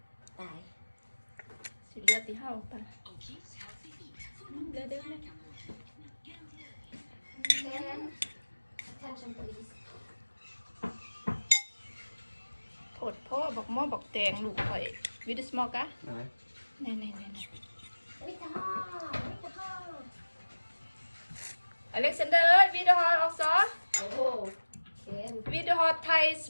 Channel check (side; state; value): both; inverted; correlation -1.00